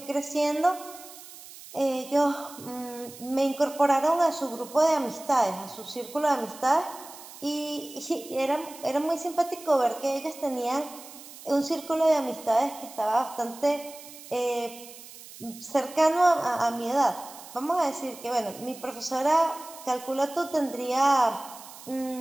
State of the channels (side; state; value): right; noise; hiss, 17 dB below the sound